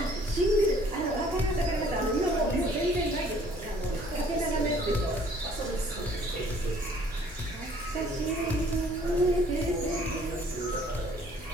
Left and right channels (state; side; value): normal; both; correlation 0.58